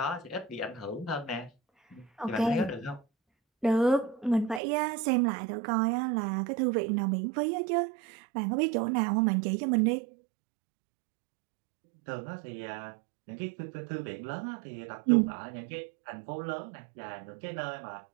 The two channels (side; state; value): left; drops out; at 4.6 s